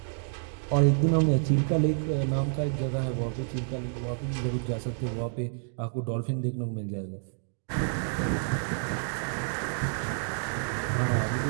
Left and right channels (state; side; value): silent; left; digital silence